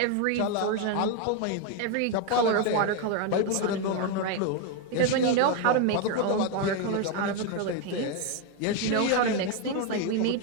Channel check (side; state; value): both; different; correlation 0.02